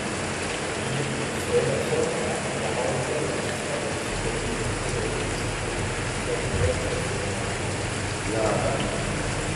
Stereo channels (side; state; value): both; identical; correlation 1.00